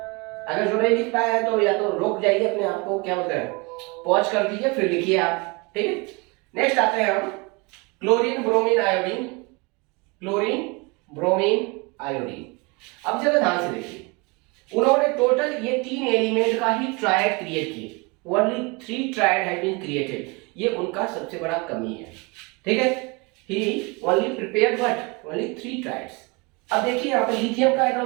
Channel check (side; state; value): left; quieter; 28.3 dB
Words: अगर जो नहीं लिख पाया है तो या तो रोक जाइए अपने आप को, क्या बोलते हैं, पॉज कर दीजिए, फिर लिखिए आप। ठीक है, नेक्स्ट आते हैं हम chlorine, bromine, iodine. Chlorine, bromine, iodine. अब जरा ध्यान से देखिए, उन्होंने टोटल ये तीन एलिमेंट का ही ट्रायड क्रिएट किए। Only 3 triad have been created. ये उनका सबसे बड़ा कमी है। ठीक है, he only prepared what, only 3 triads. अब देखिए यहाँ पे लिथियम का